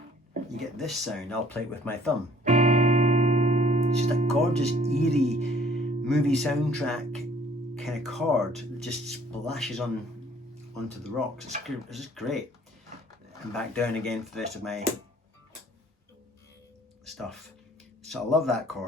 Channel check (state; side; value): normal; both; correlation 0.57